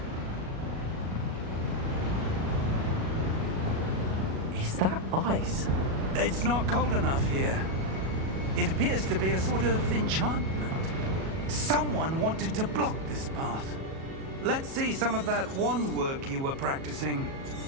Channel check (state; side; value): late; left; 37 ms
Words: Is that ice? It's not cold enough here. It appears to be a sort of enchantment. Someone wanted to block this path. Let's see some of that wand work you were practicing.